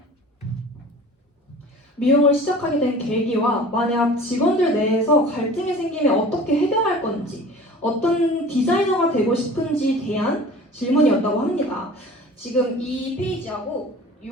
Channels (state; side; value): normal; both; correlation 0.42